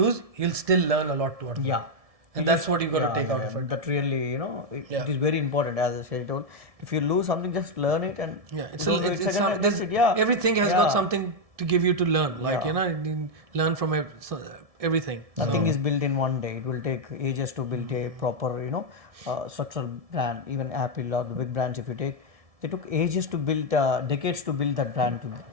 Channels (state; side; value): late; left; 1.7 ms